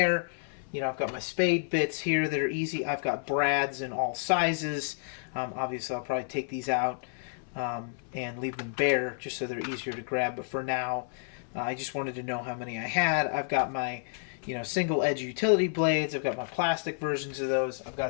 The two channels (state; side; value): silent; right; 58 dB below the other